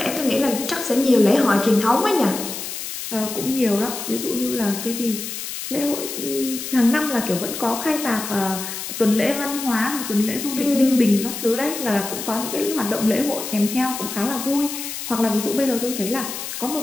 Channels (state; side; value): noise; left; hiss, 7 dB below the sound